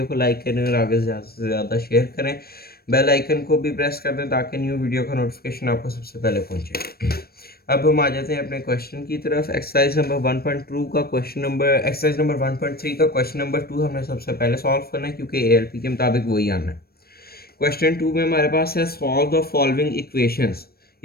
को लाइक करें और आगे ज़्यादा से ज़्यादा शेयर करें। बेल आइकन को भी प्रेस कर दें ताकि न्यू वीडियो का नोटिफिकेशन आपको सबसे पहले पहुंचे। अब हम आ जाते हैं अपने क्वेश्चन की तरफ। एक्सरसाइज नंबर 1.2 का क्वेश्चन नंबर एक्सरसाइज नंबर 1.3 का क्वेश्चन नंबर 2 हमने सबसे पहले सॉल्व करना है क्योंकि ALP के मुताबिक वही आना है। क्वेश्चन 2 में हमारे पास है सॉल्व द फॉलोइंग इक्वेशंस।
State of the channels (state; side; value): late; right; 0.44 ms